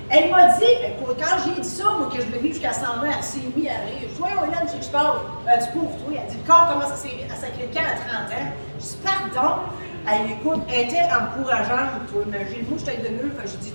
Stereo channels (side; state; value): both; inverted; correlation -1.00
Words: elle m'a dit, écoute, quand j'ai dit ça, moi, que je devais vivre jusqu'à 120, elle s'est mise à rire. Je dis, voyons, Hélène, tu sais que je parle. Du pauvre, toi. Elle dit, le corps commence à sacrer le camp à 30 ans. Je dis, pardon. Elle écoute, elle était encourageante, toi, imagine. Moi, je t'aide de mieux. J'ai dit,